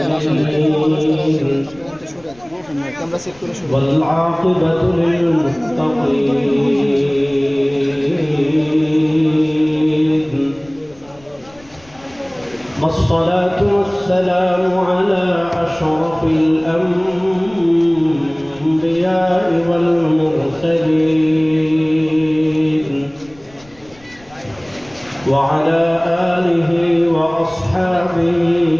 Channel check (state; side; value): noise; left; rumble, 26 dB below the sound